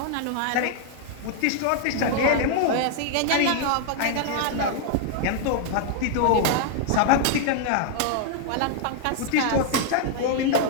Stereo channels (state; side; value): different; both; correlation -0.01